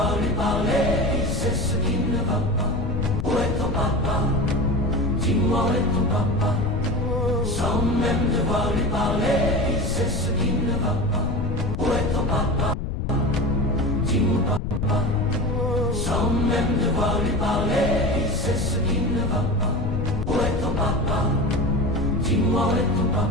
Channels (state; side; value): noise; left; rumble, 2 dB below the sound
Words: lui parler, il sait ce qui ne va pas. Où est ton papa? Dis-moi où est ton papa? Sans même devoir lui parler, il sait ce qui ne va pas. Où est ton papa? Dis-moi papa. Sans même devoir lui parler, il sait ce qui ne va pas. Où est ton papa? Dis-moi où est ton